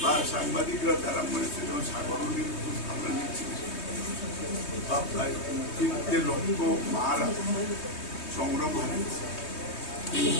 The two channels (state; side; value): late; right; 3.2 ms